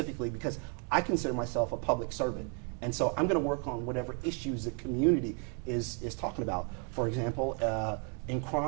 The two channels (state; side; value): quieter; left; 39.5 dB